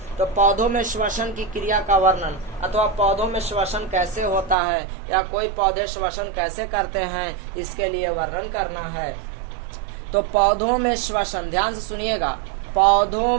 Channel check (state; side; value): drops out; left; at 4.5 s